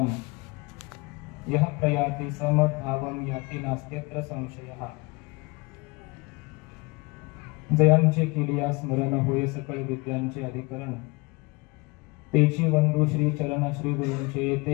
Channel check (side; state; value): right; quieter; 25.8 dB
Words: यः प्रयाति समद्भावं याति नास्त्यत्र संशयः। जयांचे केलिया स्मरण होय सकळ विद्यांचे अधिकरण, तेची वंदू श्री चरण श्री गुरूंचे